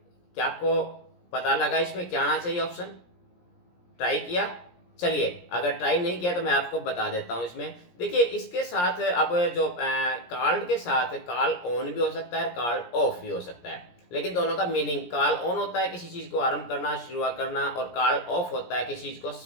क्या आपको पता लगा इसमें क्या आना चाहिए ऑप्शन? ट्राई किया? चलिए अगर ट्राई नहीं किया तो मैं आपको बता देता हूँ। इसमें देखिए इसके साथ अब जो कॉल्ड के साथ कॉल ऑन भी हो सकता है, कॉल ऑफ भी हो सकता है। लेकिन दोनों का मीनिंग, कॉल ऑन होता है किसी चीज को आरंभ करना, शुरुआत करना, और कॉल ऑफ होता है किसी चीज को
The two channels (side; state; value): right; late; 17 ms